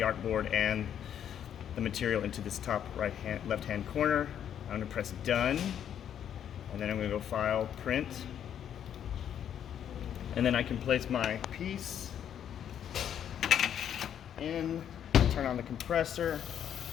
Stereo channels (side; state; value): right; quieter; 9.4 dB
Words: and the material into this top left hand corner. I'm going to press done, and then I'm going to go File, Print, and then I can place my piece in, turn on the compressor,